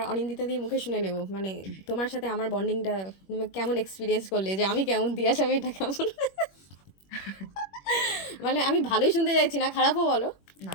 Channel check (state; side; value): late; right; 21 ms